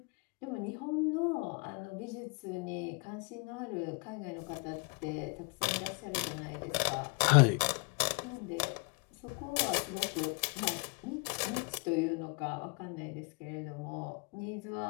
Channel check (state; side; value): quieter; right; 33.4 dB